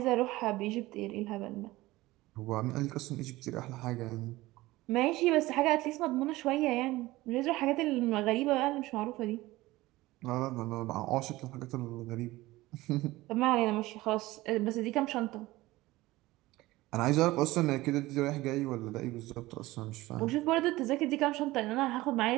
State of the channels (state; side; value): quieter; left; 18.6 dB